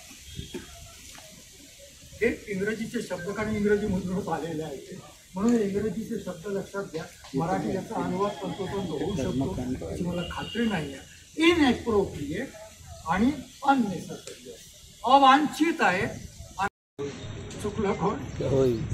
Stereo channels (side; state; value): both; identical; correlation 1.00